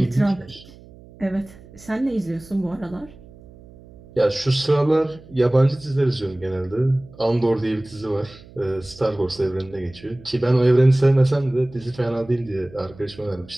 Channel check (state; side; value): noise; right; hum, 22 dB below the sound